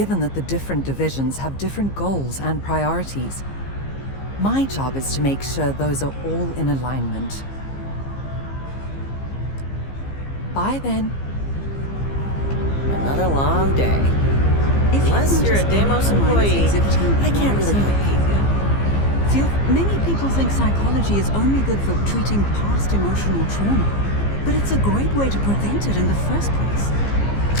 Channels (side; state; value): right; late; 15 ms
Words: that the different divisions have different goals and priorities. My job is to make sure those are all in alignment. Bye then. Another long day. Unless you're a Deimos employee, I can't really help you. Phil, many people think psychology is only good for treating past emotional trauma, but it's a great way to prevent it in the first place.